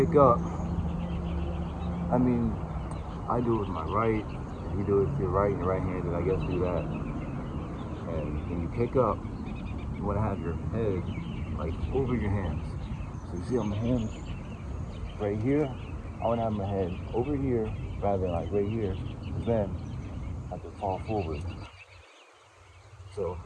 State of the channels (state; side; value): identical; both; correlation 1.00